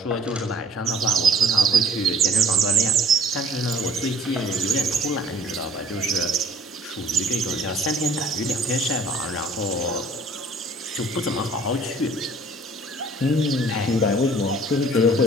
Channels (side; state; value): both; normal; correlation 0.52